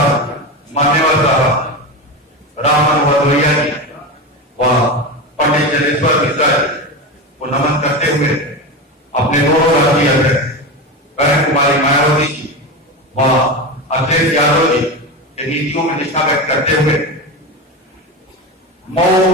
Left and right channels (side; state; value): both; normal; correlation 0.21